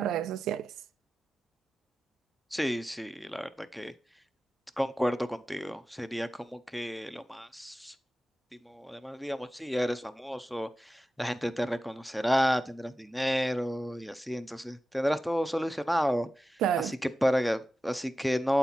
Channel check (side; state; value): both; normal; correlation 0.93